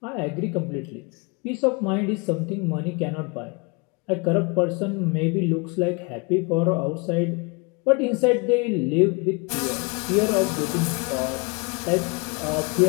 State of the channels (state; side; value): quieter; right; 30.5 dB